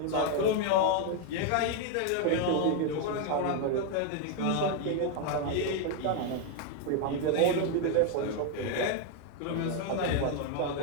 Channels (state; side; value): different; both; correlation 0.01